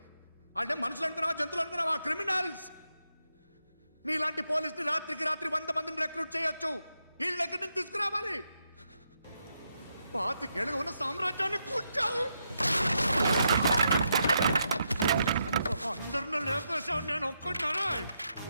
వాళ్ళే మనుషులు అనుకున్నావా జంతువులు అనుకున్నావా క్రిమినల్స్ నీలాంటి పోలీసుని రాత్రికి రాత్రి 100 మందిని రిక్రూట్ చేయొచ్చు వీళ్ళ దగ్గర నుంచి తీసుకురావాలి పాతికేళ్ళగా ఉన్న సామ్రాజ్యాన్ని కూర్చావు అందరిని లేపేశావు నేను ఒక్కడినారా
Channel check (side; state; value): both; inverted; correlation -0.82